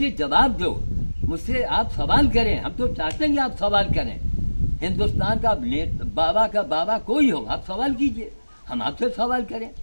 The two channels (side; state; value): both; inverted; correlation -1.00